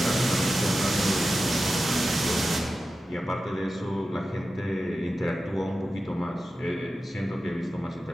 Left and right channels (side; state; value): both; normal; correlation 0.93